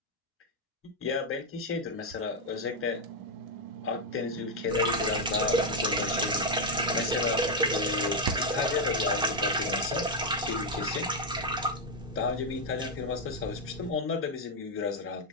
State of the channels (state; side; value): normal; both; correlation 0.01